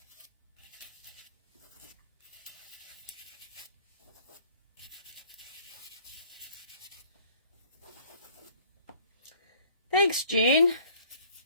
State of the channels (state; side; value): inverted; both; correlation -0.56